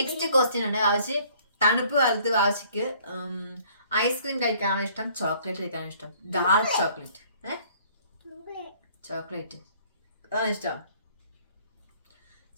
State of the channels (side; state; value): both; inverted; correlation -0.59